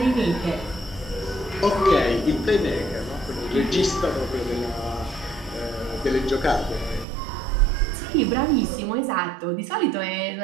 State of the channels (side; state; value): left; drops out; at 7.1 s